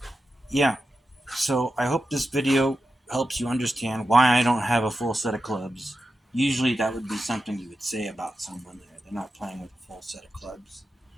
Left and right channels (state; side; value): normal; both; correlation 0.91